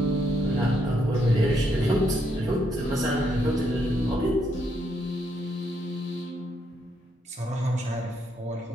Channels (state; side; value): normal; both; correlation 0.76